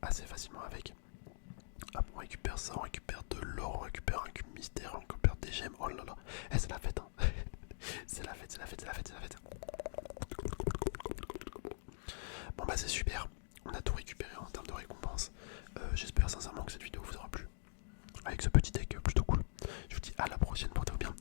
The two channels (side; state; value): right; silent; digital silence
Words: assez facilement avec. Hop, on récupère ça, on récupère de l'or, on récupère un cube mystère, on récupère des gemmes. Oh là là, c'est la fête. Hein. c'est la fête. Bon bah c'est super. On a tout récupéré en termes de récompense. sincèrement que cette vidéo vous aura plu. Avec ce petit deck plutôt cool. Je vous dis à la prochaine, portez-vous bien.